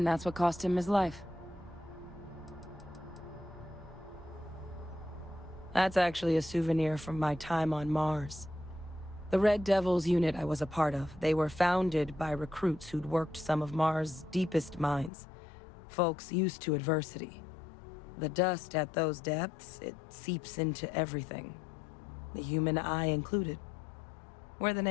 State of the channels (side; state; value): right; drops out; at 15.1 s